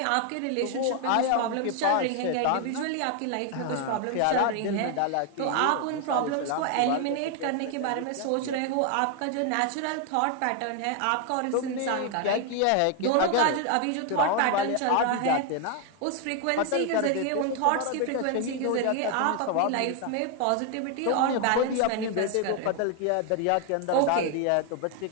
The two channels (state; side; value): different; both; correlation 0.00